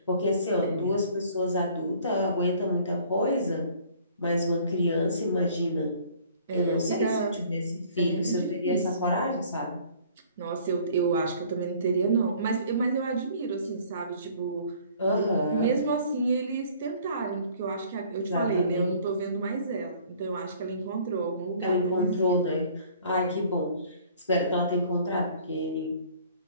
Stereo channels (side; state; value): both; inverted; correlation -0.54